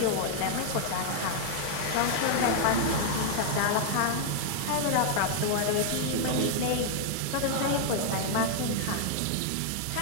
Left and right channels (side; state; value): both; different; correlation 0.00